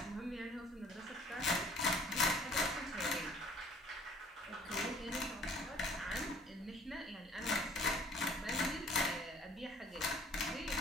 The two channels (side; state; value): both; normal; correlation 0.54